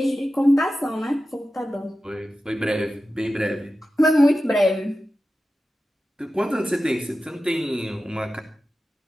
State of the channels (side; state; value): both; normal; correlation 0.93